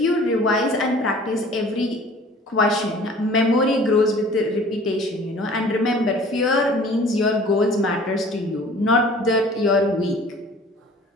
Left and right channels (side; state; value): both; normal; correlation 0.48